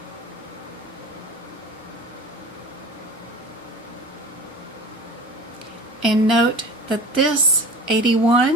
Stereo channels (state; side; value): normal; both; correlation 0.37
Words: And note that this